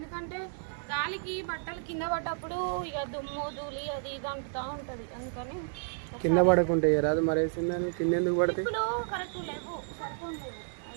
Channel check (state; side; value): silent; left; digital silence